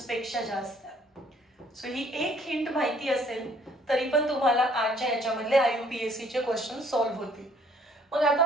पेक्षा जास्त आहे. सो ही एक हिंट माहिती असेल तरी पण तुम्हाला आजच्या याच्यामधले IUPAC चे क्वेश्चन सॉल्व्ह होतील. मग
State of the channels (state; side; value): normal; both; correlation 0.62